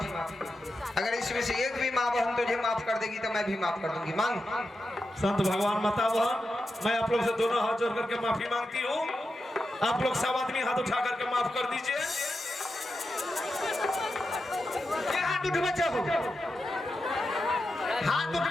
अगर इसमें से एक भी माँ बहन तुझे माफ कर देगी तो मैं भी माफ कर दूंगी। मांग। संत भगवान माता बहन, मैं आप लोग से दोनों हाथ जोड़ करके माफी मांगती हूँ। आप लोग सब आदमी हाथ उठा करके माफ कर दीजिए। ये हाथ उठवे चाहो, हाथ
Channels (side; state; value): both; normal; correlation 0.89